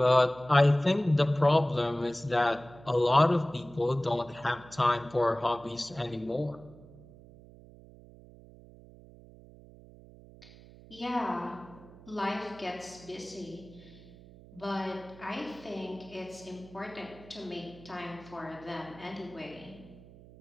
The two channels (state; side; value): noise; right; hum, 21 dB below the sound